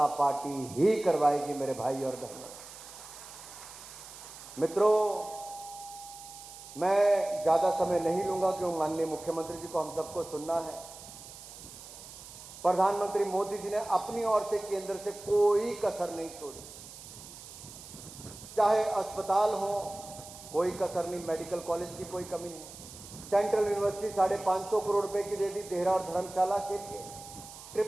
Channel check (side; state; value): right; noise; hiss, 15 dB below the sound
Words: पार्टी ही करवाएगी मेरे भाई और बहनों। मित्रों, मैं ज्यादा समय नहीं लूंगा क्योंकि माननीय मुख्यमंत्री जी को हम सबको सुनना है। प्रधानमंत्री मोदी जी ने अपनी ओर से केंद्र से कोई कसर नहीं छोड़ी, चाहे अस्पताल हो कोई कसर नहीं, मेडिकल कॉलेज की कोई कमी नहीं। सेंट्रल यूनिवर्सिटी 550 करोड़ रुपए की दे दी देहरा और धर्मशाला के लिए।